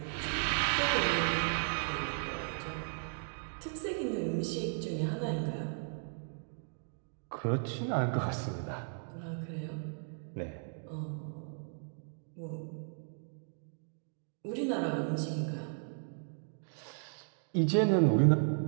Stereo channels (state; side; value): silent; left; digital silence